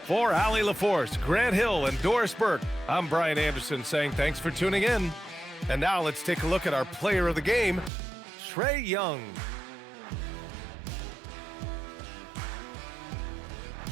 For Allie LaForce, Grant Hill, and Doris Burke, I'm Brian Anderson saying thanks for tuning in. And now let's take a look at our player of the game, Trae Young.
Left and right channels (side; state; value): left; drops out; at 7.9 s